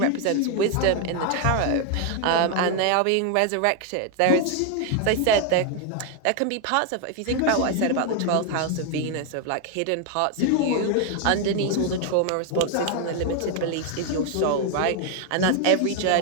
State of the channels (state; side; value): different; both; correlation 0.01